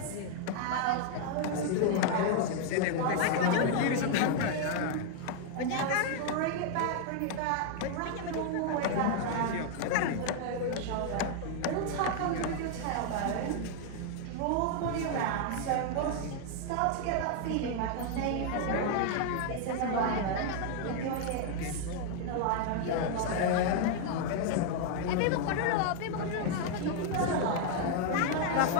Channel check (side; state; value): both; different; correlation 0.00